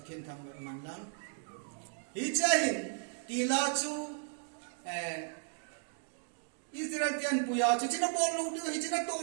thang man lang hi chahin ti la chu Israel tian puya chu china bol lu du hi china to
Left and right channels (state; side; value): silent; left; 54 dB below the other